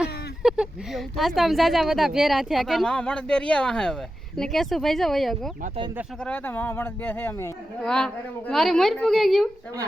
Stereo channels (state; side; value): normal; both; correlation 0.91